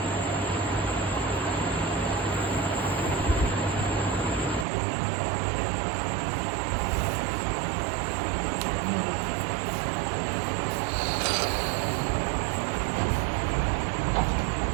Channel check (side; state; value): left; drops out; at 4.7 s